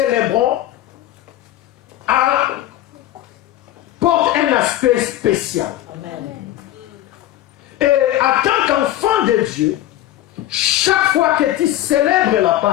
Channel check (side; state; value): right; quieter; 13.8 dB